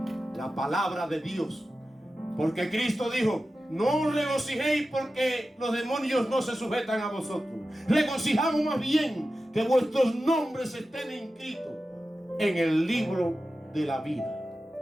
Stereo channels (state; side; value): normal; both; correlation 0.93